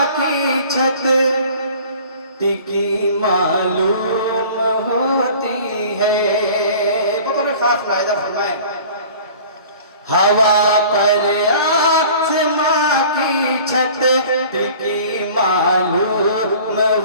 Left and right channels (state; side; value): inverted; both; correlation -0.46